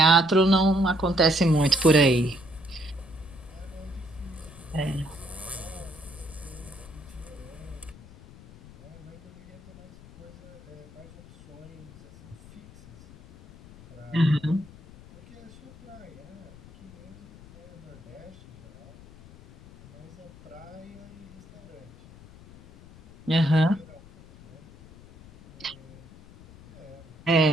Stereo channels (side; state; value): left; noise; rumble, 20 dB below the sound